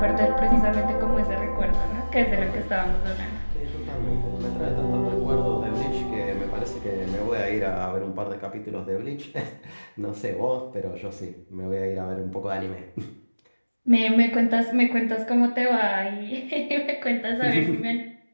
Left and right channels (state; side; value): inverted; both; correlation -1.00